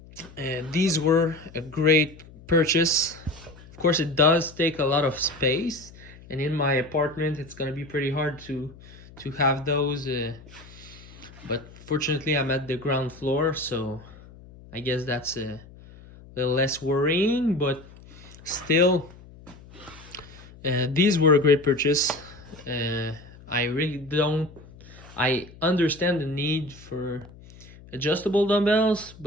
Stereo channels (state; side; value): noise; left; hum, 20 dB below the sound